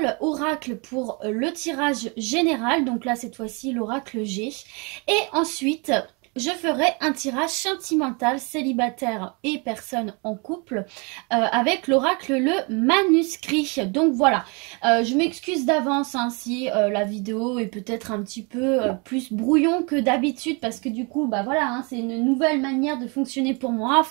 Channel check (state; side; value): quieter; left; 31.8 dB